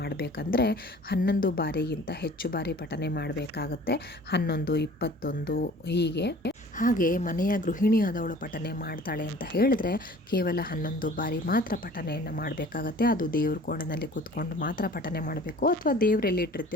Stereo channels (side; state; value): both; normal; correlation 0.48